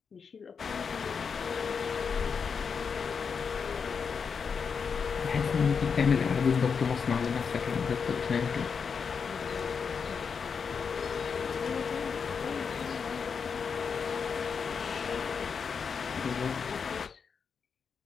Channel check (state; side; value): quieter; right; 6.0 dB